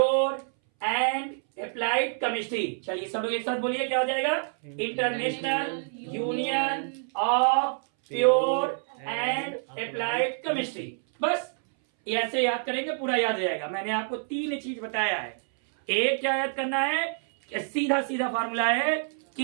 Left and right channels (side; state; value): left; silent; 60 dB below the other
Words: and applied chemistry. चलिए सब लोग एक साथ बोलिए, क्या हो जाएगा? International union of pure and applied chemistry. बस ऐसे याद करेंगे, पूरा याद हो जाएगा। मैंने आपको 3 चीज बताया है। एक क्या याद करना है? सीधा सीधा फार्मूला है